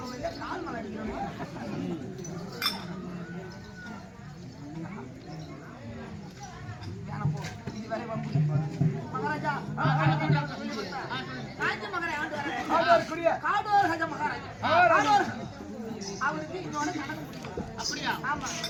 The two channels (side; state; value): both; identical; correlation 1.00